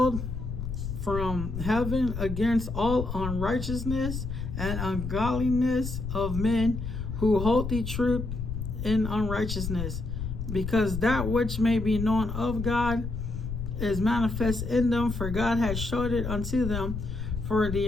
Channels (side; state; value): left; noise; rumble, 5 dB below the sound